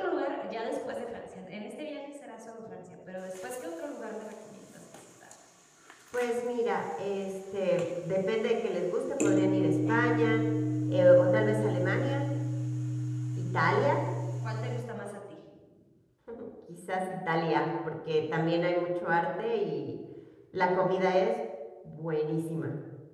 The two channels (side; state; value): both; identical; correlation 1.00